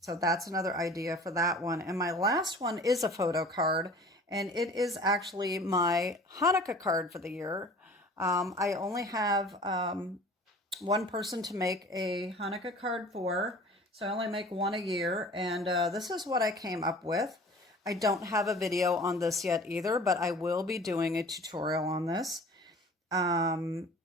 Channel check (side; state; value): both; normal; correlation 0.45